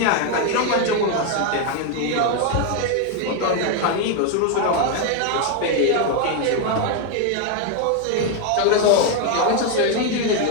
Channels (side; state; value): both; different; correlation 0.01